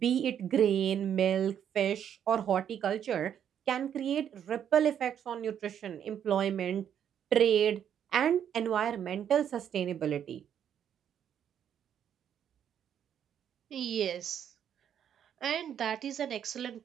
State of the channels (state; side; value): quieter; left; 9.2 dB